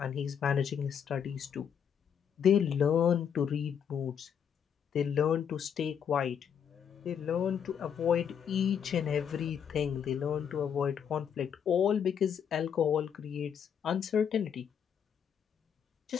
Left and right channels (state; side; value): quieter; right; 8.0 dB